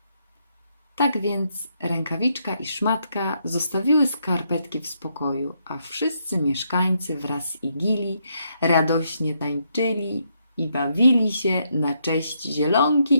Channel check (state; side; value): inverted; both; correlation -0.77